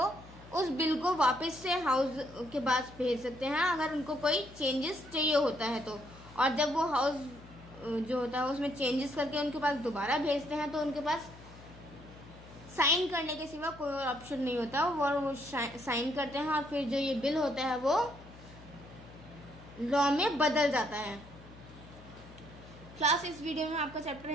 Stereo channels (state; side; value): noise; left; hum, 19 dB below the sound